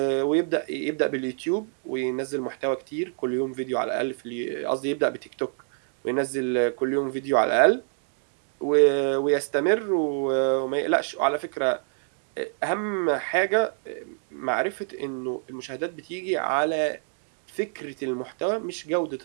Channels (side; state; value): left; silent; 61 dB below the other